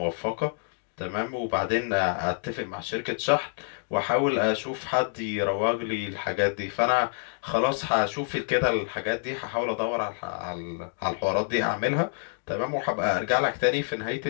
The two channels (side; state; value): right; silent; 60 dB below the other